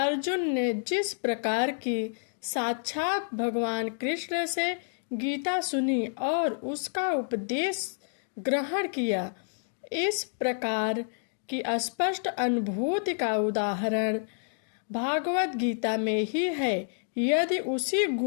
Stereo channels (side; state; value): right; silent; digital silence